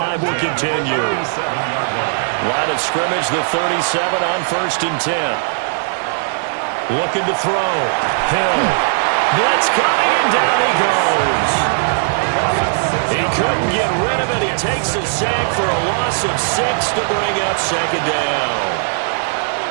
will continue. Line of scrimmage, the 37 on 1st and 10. Looking to throw. Hill. Blitz coming, and down he goes. He couldn't get rid of it. He takes a sack for a loss of 6 to bring up 2nd down.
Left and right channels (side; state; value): left; silent; 68 dB below the other